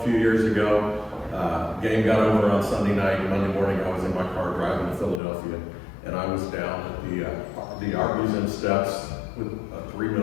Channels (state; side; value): drops out; right; at 5.2 s